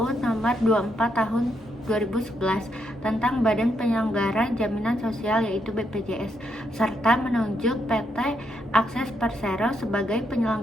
Nomor 24 Tahun 2011 tentang Badan Penyelenggara Jaminan Sosial, yaitu BPJS, serta menunjuk PT Akses Persero sebagai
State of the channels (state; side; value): normal; both; correlation 0.78